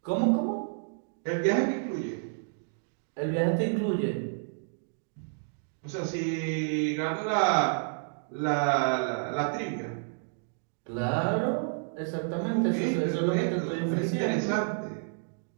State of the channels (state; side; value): silent; left; digital silence